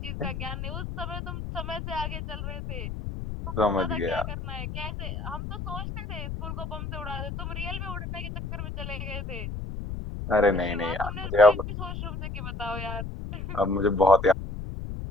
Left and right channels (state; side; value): noise; left; rumble, 6 dB below the sound